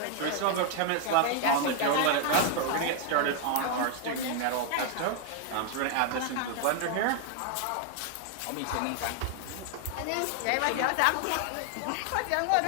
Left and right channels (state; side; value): different; both; correlation 0.00